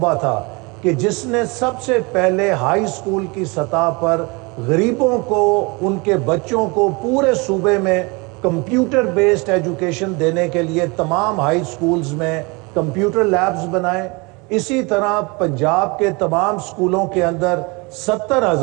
تھا کہ جس نے سب سے پہلے ہائی سکول کی سطح پر غریبوں کو، ان کے بچوں کو پورے صوبے میں کمپیوٹر بیسڈ ایجوکیشن دینے کے لیے تمام ہائی سکولز میں کمپیوٹر لیبز بنائے۔ اسی طرح پنجاب کے تمام سکولوں کے اندر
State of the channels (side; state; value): left; quieter; 28.0 dB